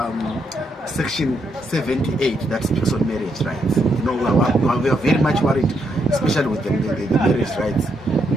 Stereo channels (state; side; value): normal; both; correlation 0.78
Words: Section 78 that speaks on marriage rights. You know, we are very much worried, especially with the marriage rights.